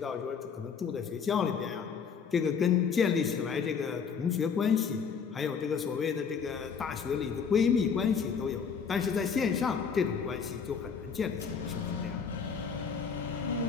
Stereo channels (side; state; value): right; quieter; 6.3 dB